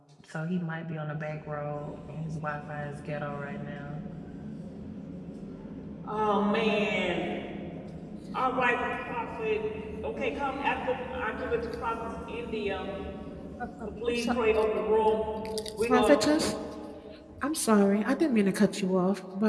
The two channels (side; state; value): both; identical; correlation 1.00